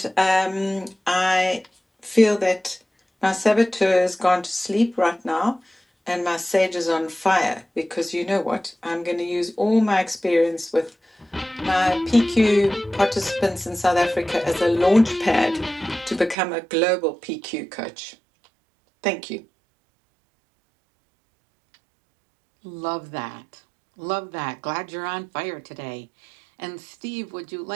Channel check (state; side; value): drops out; left; at 16.4 s